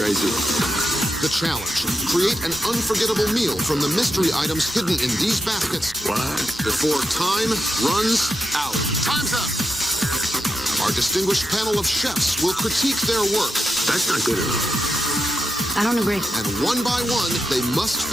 The challenge, create an unforgettable meal from the mystery items hidden in these baskets. What? Before time runs out. Time's up. Our distinguished panel of chefs will critique their work. That's not good enough. I don't agree. And one by one, they must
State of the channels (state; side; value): normal; both; correlation 0.84